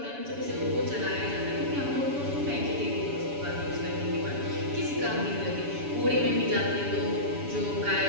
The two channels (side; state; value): left; late; 7.1 ms